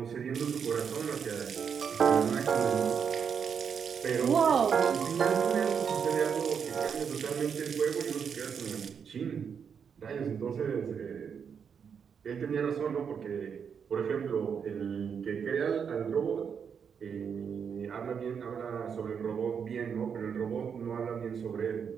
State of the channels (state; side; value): quieter; left; 7.0 dB